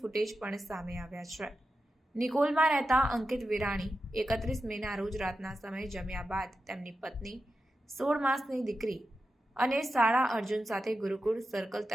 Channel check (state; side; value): normal; both; correlation 0.90